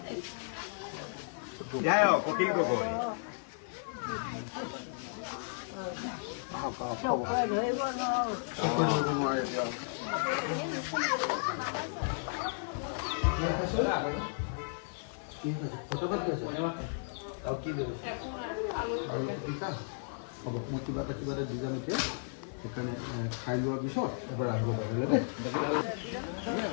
কপিল গগৈ হ'ব, মই কিবা এটা দি যাম এতিয়া। সেইকাৰণে খাই লোৱাৰ পিছত এবাৰ আহিব পাৰিলে দেই।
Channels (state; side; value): silent; right; 55 dB below the other